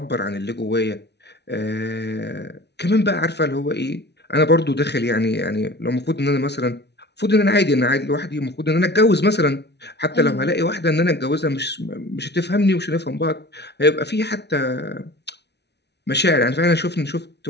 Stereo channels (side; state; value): right; late; 0.49 ms